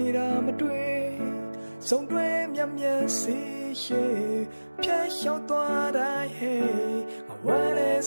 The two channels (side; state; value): both; inverted; correlation -1.00